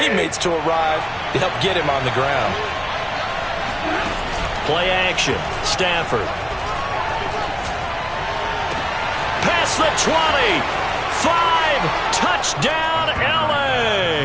to arrive to help get him on the ground. Play action. Stafford. Past the 20. 5. Touchdown,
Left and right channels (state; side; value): identical; both; correlation 1.00